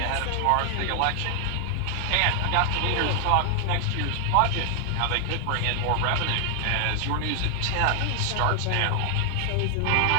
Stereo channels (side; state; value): both; different; correlation 0.00